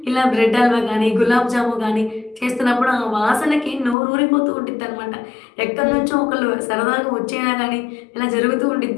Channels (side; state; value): right; drops out; at 4.0 s